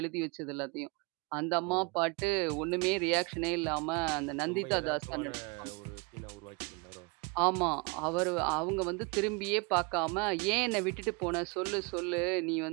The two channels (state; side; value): quieter; left; 30.4 dB